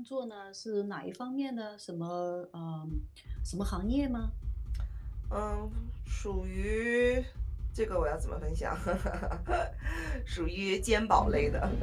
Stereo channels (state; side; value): identical; both; correlation 1.00